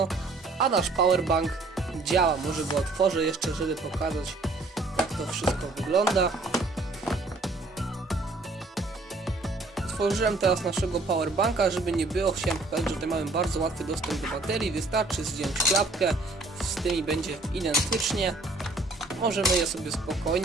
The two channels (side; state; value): left; quieter; 3.2 dB